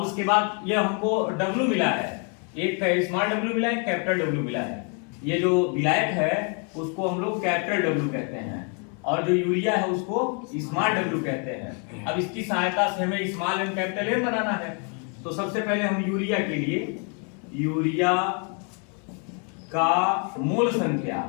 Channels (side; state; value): right; quieter; 38.1 dB